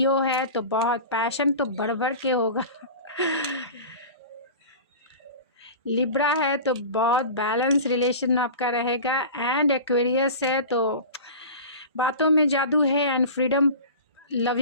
है, तो बहुत पैशन तो बढ़ के होगा। लिब्रा है, तो बहुत बैलेंस रिलेशन आपका रहेगा। एंड एक्वेरियस है, तो बातों में जादू है एंड फ्रीडम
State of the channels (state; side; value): inverted; both; correlation -0.35